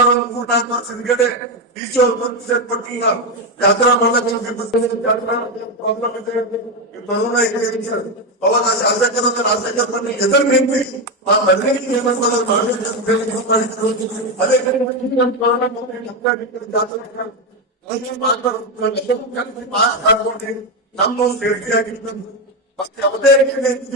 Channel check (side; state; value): both; normal; correlation 0.09